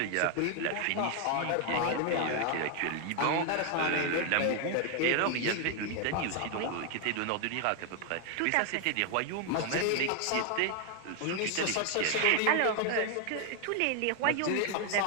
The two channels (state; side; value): different; both; correlation 0.00